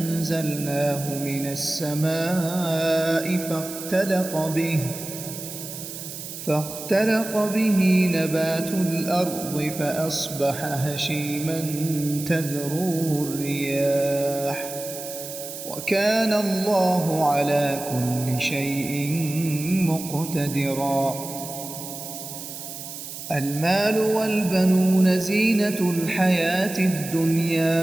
من السماء فاختلط به نبات الأرض فأصبح هشيما تذروه الرياح وكان الله على كل شيء مقتدرا. المال والبنون زينة الحياة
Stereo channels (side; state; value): right; noise; hiss, 10 dB below the sound